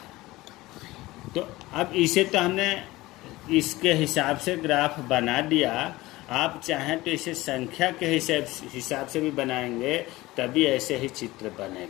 तो अब इसे तो हमने इसके हिसाब से ग्राफ बना दिया। आप चाहें तो इसे संख्या के हिसाब से भी बनाएंगे, तभी ऐसे ही चित्र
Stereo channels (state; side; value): quieter; right; 19.1 dB